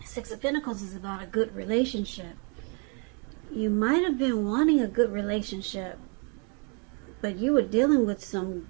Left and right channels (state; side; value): quieter; left; 36.8 dB